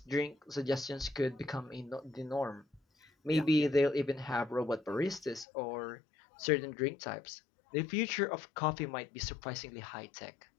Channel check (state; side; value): drops out; right; at 5.5 s